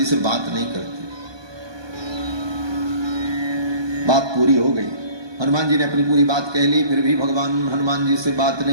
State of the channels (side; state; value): left; late; 1.2 ms